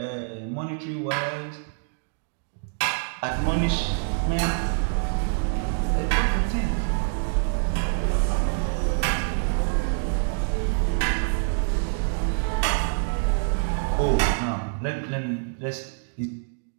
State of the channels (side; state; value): left; silent; digital silence